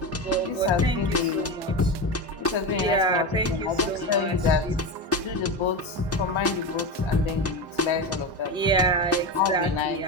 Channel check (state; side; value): normal; both; correlation 0.20